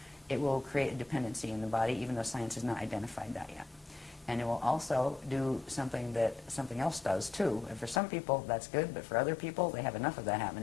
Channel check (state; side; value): drops out; right; at 8.0 s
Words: it will create a dependency in the body, even though science has not identified that yet. And it will also do something that something else does, too. And for some people, that's good, but for other people, they have enough of that